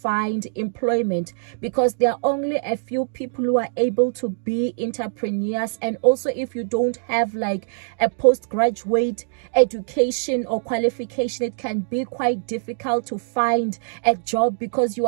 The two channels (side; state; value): left; silent; digital silence